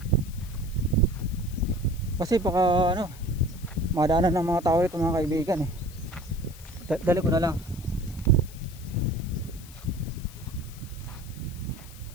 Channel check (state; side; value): noise; left; hiss, 19 dB below the sound